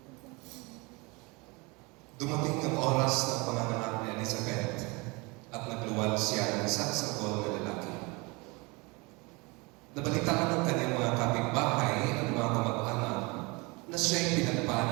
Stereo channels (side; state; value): left; quieter; 26.9 dB